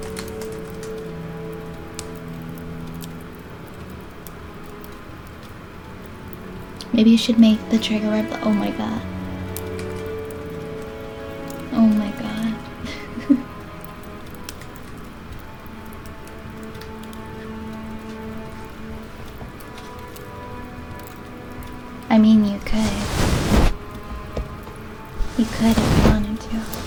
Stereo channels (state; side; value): identical; both; correlation 1.00